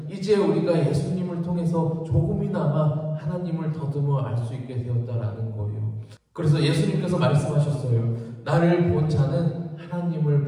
이제 우리가 예수님을 통해서 조금이나마 하나님을 더듬어 알 수 있게 되었다라는 거예요. 그래서 예수님께서 말씀하셨어요. 나를 본 자는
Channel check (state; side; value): identical; both; correlation 1.00